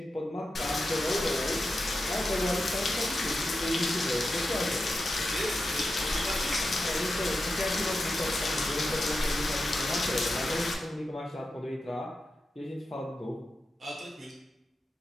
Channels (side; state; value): both; normal; correlation 0.90